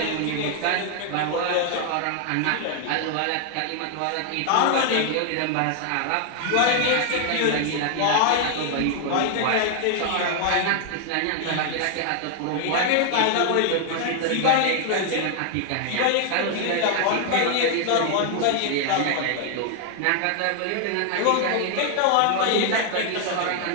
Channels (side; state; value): both; different; correlation 0.00